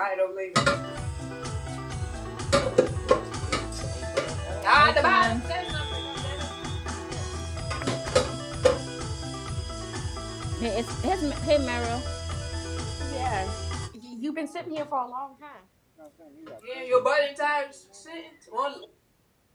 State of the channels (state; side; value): identical; both; correlation 1.00